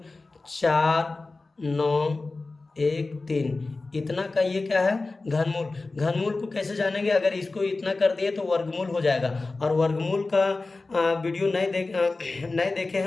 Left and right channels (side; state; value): right; quieter; 3.5 dB